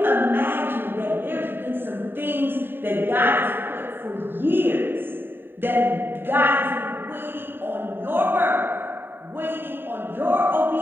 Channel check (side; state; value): left; late; 0.099 ms